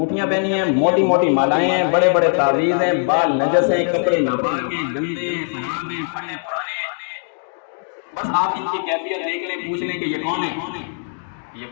پہنی ہیں، موٹی موٹی مالائیں ہیں، بڑے بڑے تعویذ ہیں، بال نجس ہیں، کپڑے ناپاک ہیں، گندے ہیں، خراب ہیں، پھٹے پرانے ہیں. بس آپ ان کی کیفیت دیکھ لیں، پوچھ لیں کہ یہ کون ہے. یہ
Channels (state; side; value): silent; right; digital silence